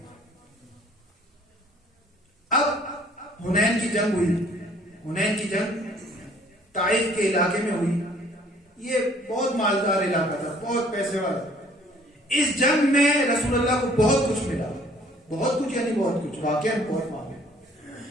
اب حنین کی جنگ ہوئی. حنین کی جنگ طائف کے علاقے میں ہوئی. یہ بہت مالدار علاقہ تھا، بہت پیسے والا. اس جنگ میں رسول اللہ کو بہت کچھ ملا، بہت کچھ یعنی بہت کچھ، واقعا بہت مانگے.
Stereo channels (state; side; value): normal; both; correlation 0.58